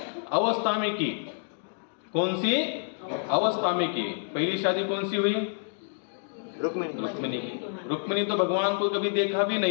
अवस्था में की, कौन सी अवस्था में की। पहली शादी कौन सी हुई? रुक्मिणी की। रुक्मिणी तो भगवान को कभी देखा भी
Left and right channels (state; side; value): silent; right; digital silence